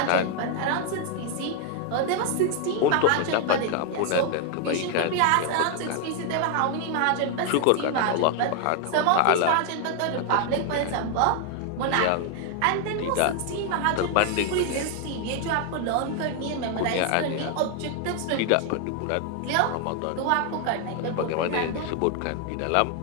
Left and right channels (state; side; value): different; both; correlation 0.00